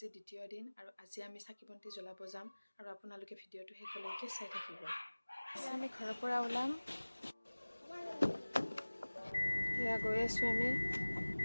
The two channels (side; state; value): both; inverted; correlation -1.00